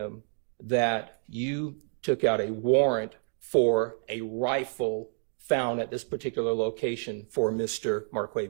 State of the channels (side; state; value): left; silent; digital silence